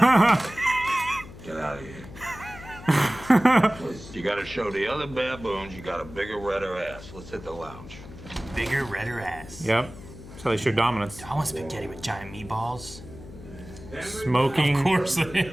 Get out of here. You gotta show the other baboons you got a bigger, redder ass. Let's hit the lounge. Bigger, redder ass. Yep. That's how they show dominance. I want spaghetti with giant meatballs. Smoking. Of course.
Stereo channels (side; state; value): left; noise; hum, 16 dB below the sound